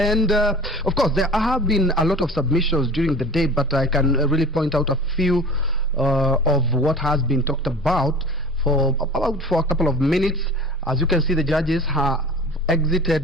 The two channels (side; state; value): both; normal; correlation 0.39